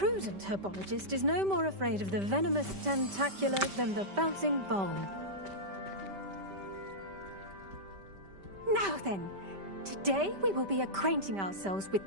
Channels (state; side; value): late; left; 5.1 ms